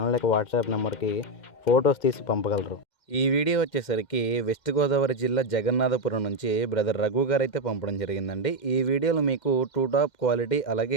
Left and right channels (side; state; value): right; late; 2.1 ms